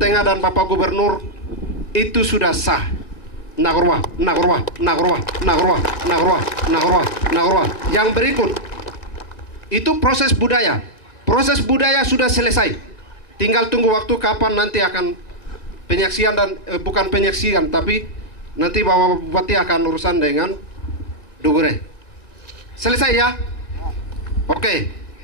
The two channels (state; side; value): late; right; 1.9 ms